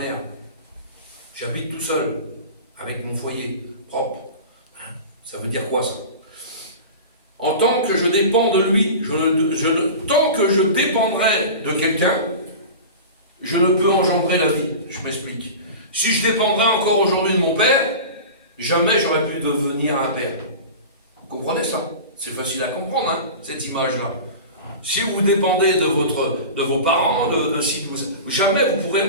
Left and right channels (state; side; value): inverted; both; correlation -0.33